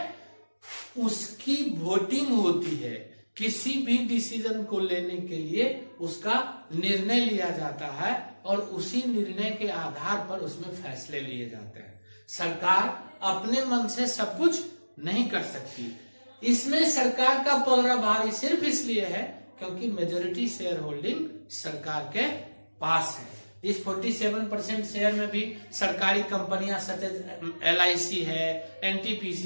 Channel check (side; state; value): both; inverted; correlation -1.00